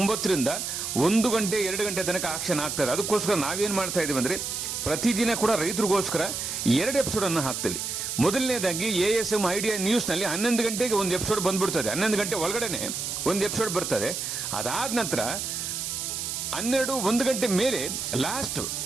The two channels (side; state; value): right; noise; hiss, 4 dB below the sound